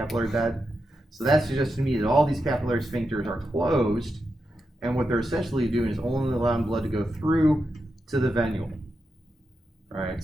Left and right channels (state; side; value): normal; both; correlation 0.87